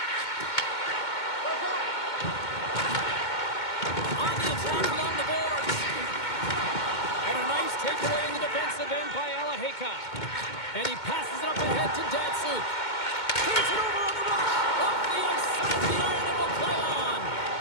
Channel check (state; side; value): late; right; 2.2 ms